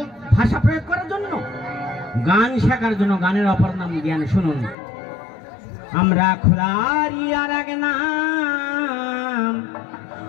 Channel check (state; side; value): drops out; right; at 4.8 s